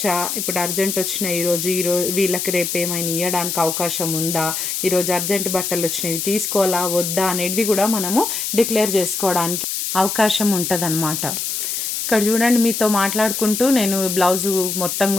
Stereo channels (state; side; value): noise; left; hiss, 2 dB below the sound